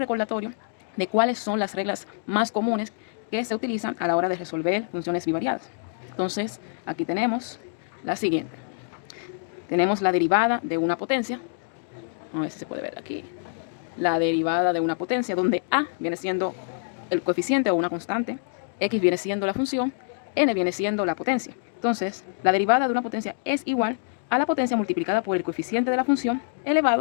de cuáles son las reglas más comunes que se utilizan a la hora de resolver funciones bivariadas. Entonces aquí tenemos la siguiente. Tenemos la derivada de una potencia. A ver si se puede ver aquí. La derivada de una potencia donde a viene siendo el coeficiente o una constante, x viene siendo la función, n viene siendo la potencia. Entonces, la derivada de una potencia es igual a la potencia multiplicada por el coeficiente de la función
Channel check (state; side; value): silent; right; digital silence